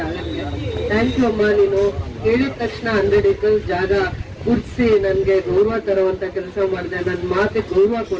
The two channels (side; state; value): both; identical; correlation 1.00